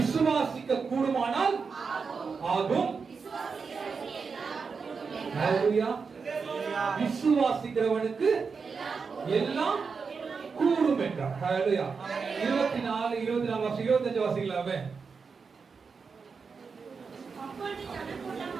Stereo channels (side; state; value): left; quieter; 5.2 dB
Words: கூடுமானால் ஆகும். ஹalleluya. விசுவாசிக்கிறவனுக்கு எல்லாம் கூடும் என்றார். ஹalleluya. 24, 24 வாசி, 25 வாசிக்கலாமே.